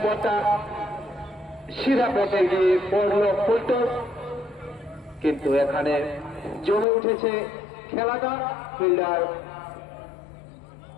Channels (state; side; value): drops out; right; at 6.9 s